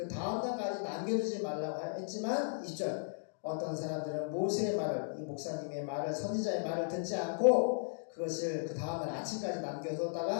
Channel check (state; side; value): silent; right; digital silence